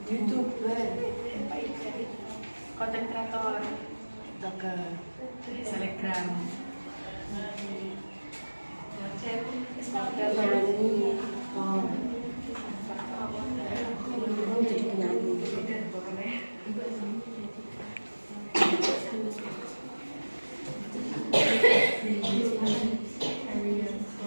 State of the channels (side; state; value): both; inverted; correlation -1.00